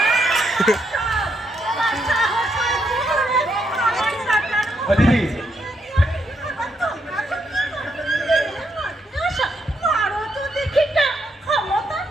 তোমার সাহস হয় কি করে আমার বেটার ও দিদি, আবার তোমরা তো কি করো? আশা, মারো তো দেখি কেমন ক্ষমতা।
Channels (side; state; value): both; normal; correlation 0.78